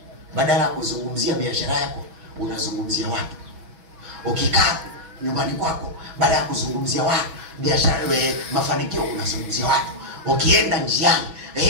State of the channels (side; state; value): left; late; 6.1 ms